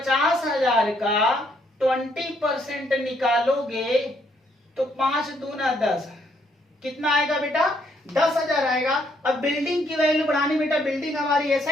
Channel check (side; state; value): both; normal; correlation 0.71